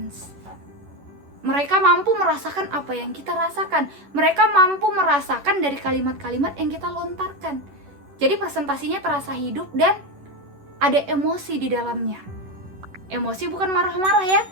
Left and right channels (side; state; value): left; late; 11 ms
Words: Mereka mampu merasakan apa yang kita rasakan. Mereka mampu merasakan dari kalimat-kalimat yang kita lontarkan. Jadi presentasinya terasa hidup dan ada emosi di dalamnya. Emosi bukan marah-marah ya.